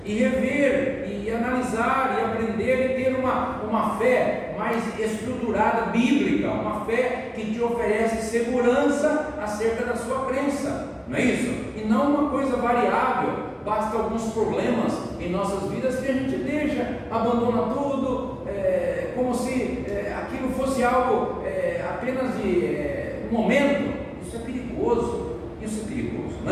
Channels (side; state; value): both; identical; correlation 1.00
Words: e rever e analisar e aprender e ter uma fé mais estruturada, bíblica, uma fé que te oferece segurança acerca da sua crença, não é isso? E não uma coisa variável, basta alguns problemas em nossas vidas que a gente deixa, abandona tudo, como se aquilo fosse algo apenas de um momento. Isso é perigoso,